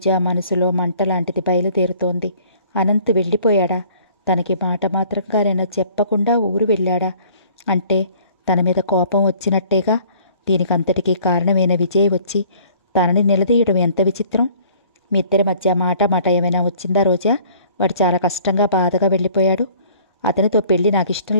మనసులో మంటలాంటిది బయలుదేరుతోంది. అనంత్ వెళ్ళిపోయాడా? తనకి మాట మాత్రంగానైనా చెప్పకుండా ఊరు వెళ్ళాడా? అంటే తన మీద కోపం వచ్చినట్టేగా. దీనికంతటికీ కారణమైన విజయ్ వచ్చి తనని నిలదీయడం ఎంత విచిత్రం. మీ ఇద్దరి మధ్య మాట ఏమైనా వచ్చిందా రోజా? వాడు చాలా కష్టంగా బాధగా వెళ్ళిపోయాడు. అతనితో పెళ్ళి నాకు ఇష్టం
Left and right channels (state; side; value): inverted; both; correlation -0.54